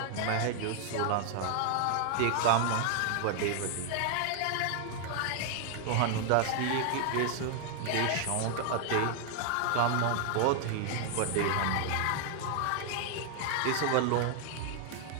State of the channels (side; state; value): both; different; correlation 0.00